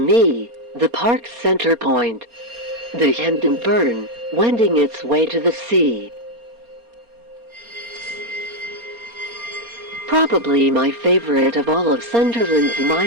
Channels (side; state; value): left; late; 4.3 ms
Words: me, the park's center point. The Hendon Burn, wending its way to the sea. Probably my favorite of all of Sunderland's